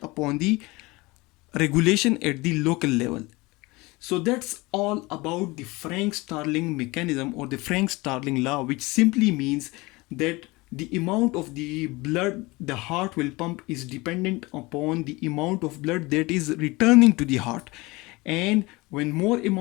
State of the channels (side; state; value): right; quieter; 23.0 dB